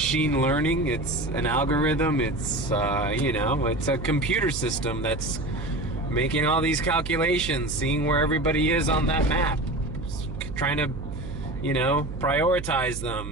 learning, it's an algorithm, it's you know, it's a computer system that's making all these calculations, seeing where everybody is on that map, trying to, you know, prioritize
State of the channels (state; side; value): noise; right; hum, 8 dB below the sound